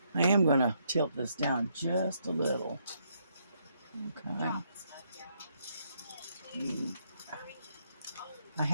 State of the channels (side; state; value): both; inverted; correlation -0.74